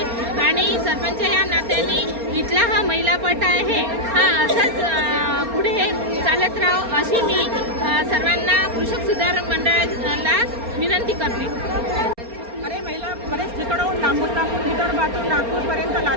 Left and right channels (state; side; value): late; left; 4.3 ms